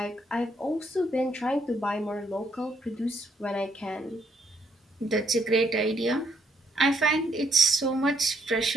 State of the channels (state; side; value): normal; both; correlation 0.72